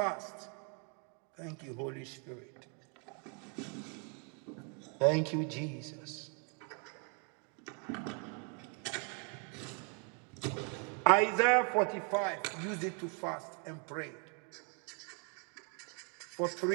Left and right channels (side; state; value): left; quieter; 39.1 dB